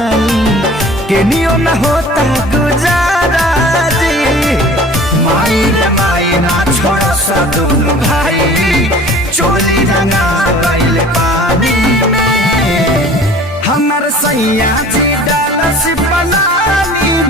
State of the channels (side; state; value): both; normal; correlation 0.46